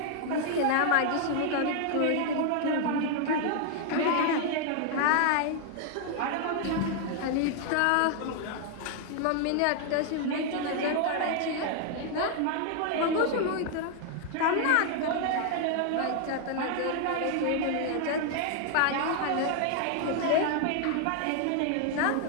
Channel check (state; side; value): different; both; correlation 0.00